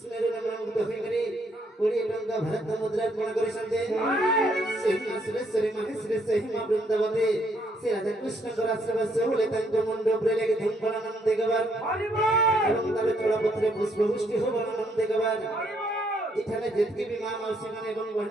भारत मुद्रा कोण करी संते सेही सुरेश्वरी महेश्वरी सेही मां वृंदावती श्री राधा कृष्ण को आश्रम से होले तंग मुंडो प्रेले के धूम फलानंद देगवार एवं तबे चोड़ा पत्रे पुष्प वृष्टि हो फलानंद देगवार इठाने जेतकी भी मां मौसी माने एवं बहन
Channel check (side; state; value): both; normal; correlation 0.71